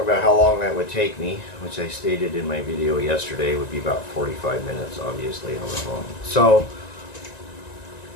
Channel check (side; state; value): right; late; 1.9 ms